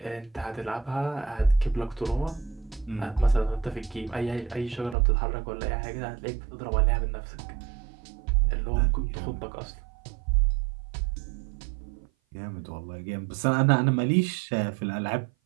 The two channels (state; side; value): drops out; left; at 5.0 s